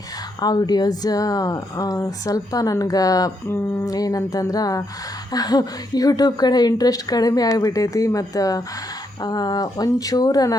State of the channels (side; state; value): both; normal; correlation 0.78